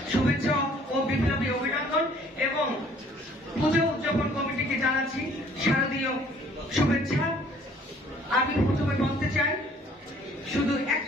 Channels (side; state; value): both; normal; correlation 0.57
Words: শুভেচ্ছা ও বিপ্লবী অভিনন্দন এবং পুজো উদযাপন কমিটিকে জানাচ্ছি শারদীয় শুভেচ্ছা। আমি প্রথমে বলতে চাই, শুধু